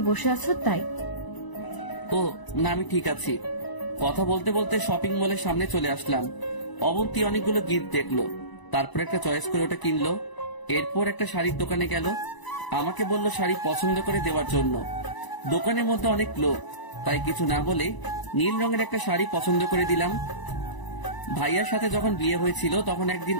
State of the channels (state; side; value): late; right; 1.0 ms